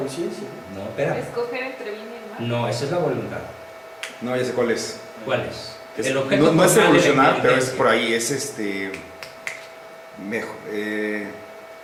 no, espera. Escoger entre bien y el mal. No, esa es la voluntad. No, ya sé cuál es. ¿Cuál es? Es- El objeto no, no es formal de la evolucionar, pero es inteligencia. por ahí, mejor,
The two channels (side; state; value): both; identical; correlation 1.00